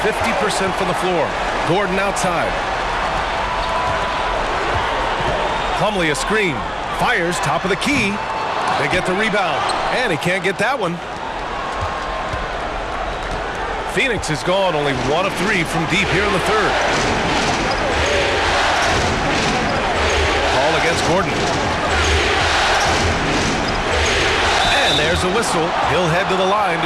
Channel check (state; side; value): identical; both; correlation 1.00